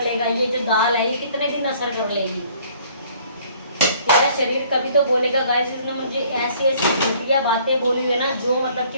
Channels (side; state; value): both; inverted; correlation -0.58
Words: लेगा, ये जो दाल है ये कितने दिन असर कर लेगी। मेरा शरीर कभी तो बोलेगा गाइस इसने मुझे ऐसी ऐसी घटिया बातें बोली हुई है ना, जो मतलब कि